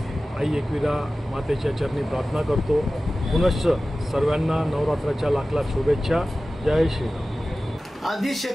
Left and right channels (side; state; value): both; normal; correlation 0.96